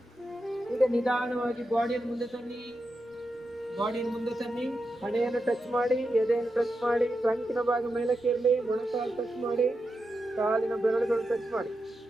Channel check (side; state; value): both; normal; correlation 0.88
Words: ಈಗ ನಿಧಾನವಾಗಿ ಬಾಡಿಯನ್ನು ಮುಂದೆ ತನ್ನಿ. ಬಾಡಿಯನ್ನು ಮುಂದೆ ತನ್ನಿ. ಹಣೆಯನ್ನು ಟಚ್ ಮಾಡಿ, ಎದೆಯನ್ನು ಟಚ್ ಮಾಡಿ. ಟ್ರಂಕಿನ ಭಾಗ ಮೇಲಕ್ಕೆ ಇರಲಿ. ಮೊಣಕಾಲು ಟಚ್ ಮಾಡಿ, ಕಾಲಿನ ಬೆರಳುಗಳು ಟಚ್ ಮಾಡಿ.